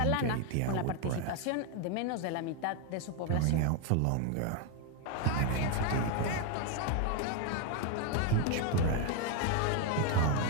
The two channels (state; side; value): different; both; correlation 0.01